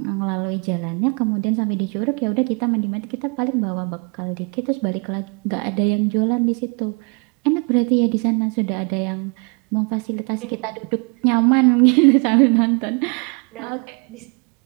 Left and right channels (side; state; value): left; quieter; 34.6 dB